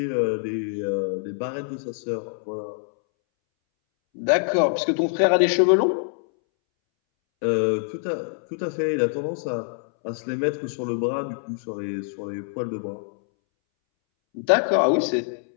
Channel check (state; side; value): silent; right; 62 dB below the other